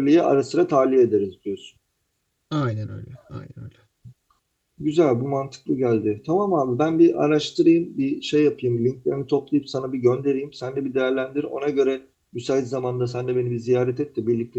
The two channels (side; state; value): both; identical; correlation 1.00